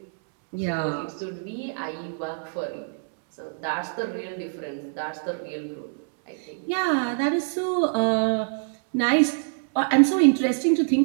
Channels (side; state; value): left; silent; digital silence